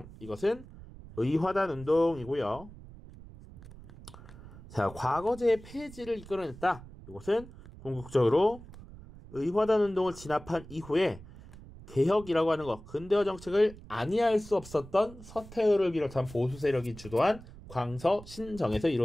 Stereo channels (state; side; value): noise; right; rumble, 17 dB below the sound